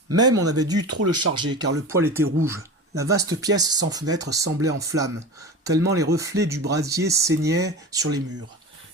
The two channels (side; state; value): both; normal; correlation 0.30